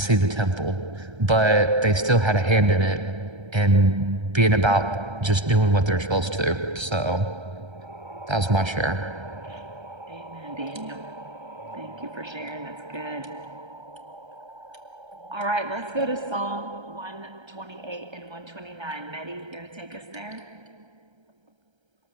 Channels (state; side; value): late; left; 1.3 ms